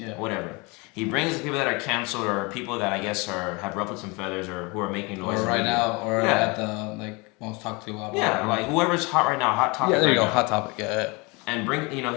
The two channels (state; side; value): quieter; right; 27.3 dB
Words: Whatever. He brings the people that are canceled, or people that I guess have ruffled some feathers, or who are making noise. Or right now, or at the most talked to about. Yeah, like whoever's hot right now, hot topic. Yeah, there you go, now. hot topic. Yeah. And